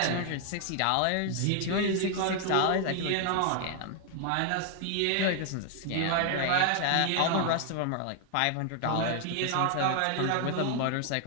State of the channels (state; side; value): different; both; correlation 0.00